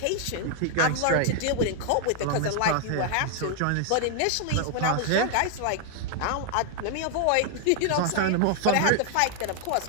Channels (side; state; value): both; different; correlation 0.00